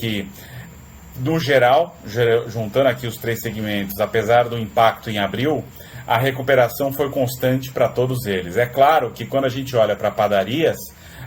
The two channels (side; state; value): both; identical; correlation 1.00